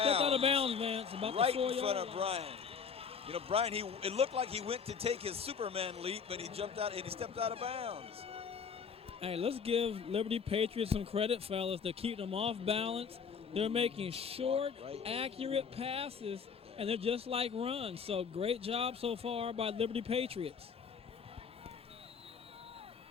stepped out of bounds, Vance. About right the 4 in front of line. Brian. You know, Brian, it looked like he went to take his Superman leap, but he jumped out and he stepped out of bounds. Hey, let's give Liberty Patriots some credit, fellas. They're keeping them off balance. They're making short, accurate passes, and they're just like runs. So great job so far by Liberty Patriots.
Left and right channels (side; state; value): right; quieter; 6.3 dB